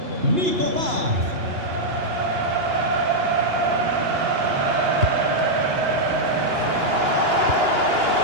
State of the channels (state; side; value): late; left; 2.8 ms